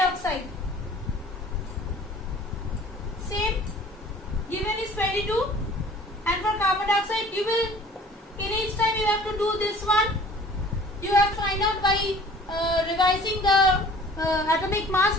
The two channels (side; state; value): both; normal; correlation 0.49